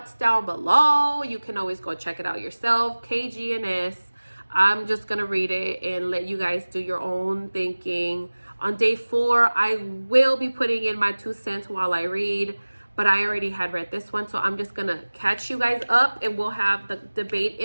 down below. You can always go check it out yourself. KGNS. I'm just gonna read it and let you guys do your own thinking. On day 4, I will be putting in my 2 cents while I read, but I already had read this one, so I'm just gonna catch you guys up, and we'll have the debate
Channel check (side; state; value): both; inverted; correlation -1.00